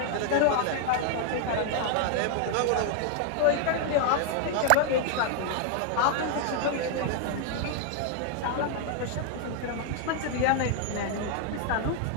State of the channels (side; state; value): both; different; correlation 0.00